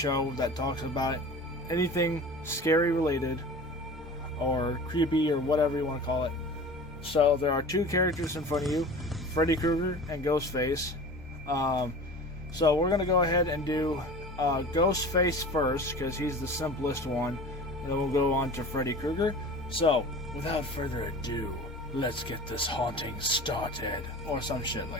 that talks about anything scary related, or creepy, or whatever you want to call it. So, there are two characters in front of you, Freddy Krueger and Ghostface. So, we're going to go ahead and do Ghostface first, because he's the simplest one, and then we'll go on to Freddy Krueger. So, without further ado, let's get this haunting started, or some shit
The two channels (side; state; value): both; normal; correlation 0.38